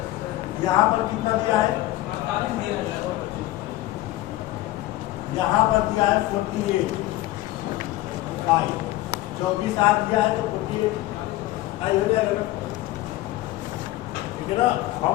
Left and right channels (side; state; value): right; quieter; 16.7 dB